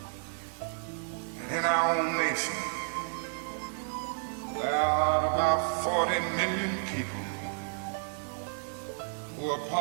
that in our own nation there are about 40 million people who are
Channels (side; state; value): left; silent; 57 dB below the other